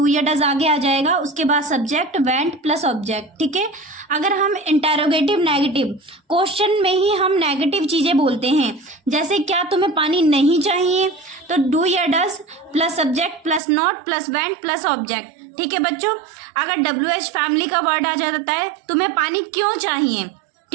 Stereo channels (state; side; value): drops out; left; at 13.6 s